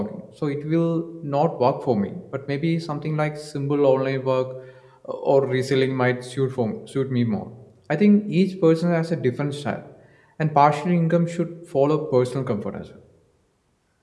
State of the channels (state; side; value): identical; both; correlation 1.00